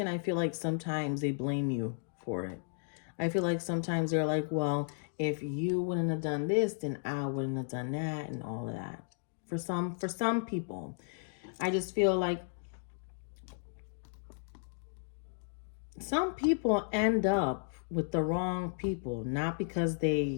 I feel like sometimes they blame you for it. I feel like sometimes they're like, well, if you wouldn't have done this, then I wouldn't have done that, and all of that. For some people, I just feel like some people end up with the wrong people, not because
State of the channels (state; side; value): silent; right; digital silence